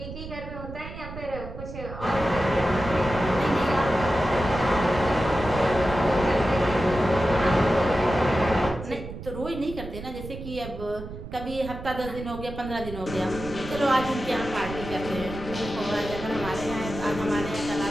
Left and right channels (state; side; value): noise; right; rumble, 11 dB below the sound